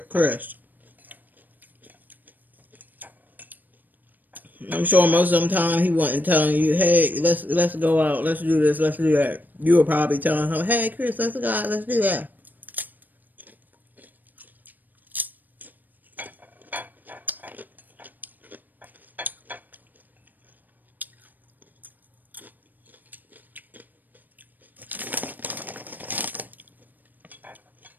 Chris. I'm sure most of the time he wasn't telling you, hey, let's go out, let's do this, let's do that. You were probably telling him, hey, Chris, let's go out, let's do that.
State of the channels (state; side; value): late; left; 0.087 ms